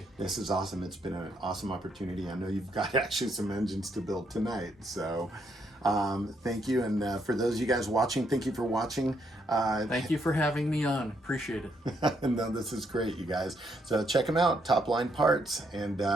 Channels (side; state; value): both; normal; correlation 0.75